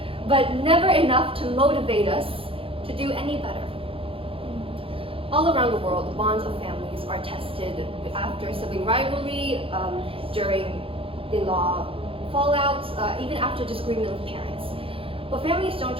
but never enough to motivate us to do any better. All around the world, the bonds of families are tested after sibling rivalry, during in-law fallouts, even after disagreement with parents. But families don't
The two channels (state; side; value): late; left; 0.27 ms